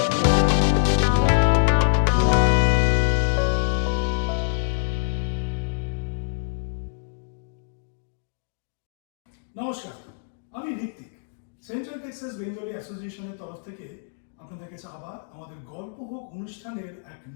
আমি Hrithik. Central Texas Bengali অ্যাসোসিয়েশনের তরফ থেকে আপনাদের কাছে আবার আমাদের গল্প হোক অনুষ্ঠানের এক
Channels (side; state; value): right; silent; digital silence